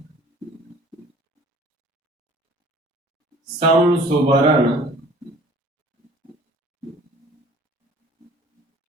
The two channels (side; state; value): both; normal; correlation 0.50